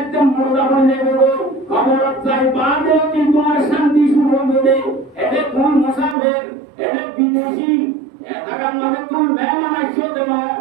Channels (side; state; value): left; drops out; at 6.2 s